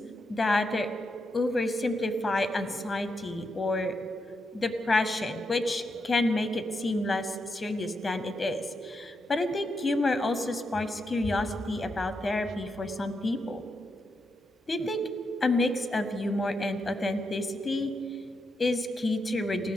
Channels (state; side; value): normal; both; correlation 0.83